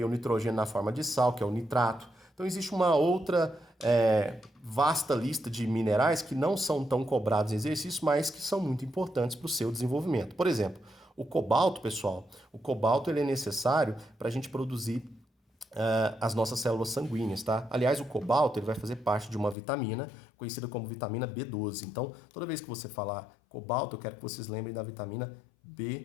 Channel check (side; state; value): right; drops out; at 19.6 s